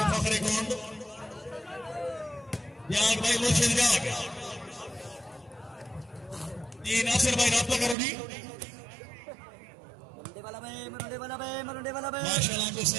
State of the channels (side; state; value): left; drops out; at 8.0 s